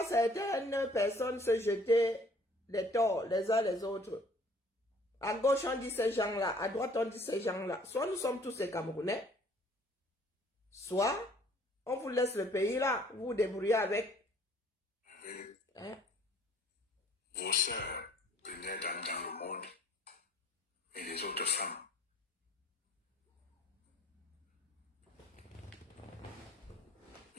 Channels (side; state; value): both; normal; correlation 0.57